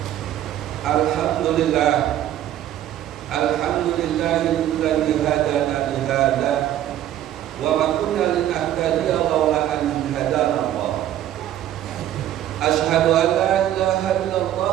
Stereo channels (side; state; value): left; quieter; 12.1 dB